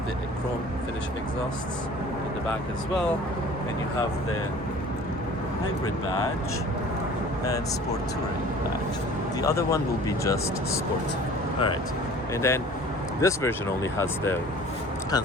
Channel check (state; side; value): normal; both; correlation 0.47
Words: the chrome finish exhausts in the back as well. And you have the hybrid badge and sport touring badge. The other one will be just sport. All right. And then this version only has the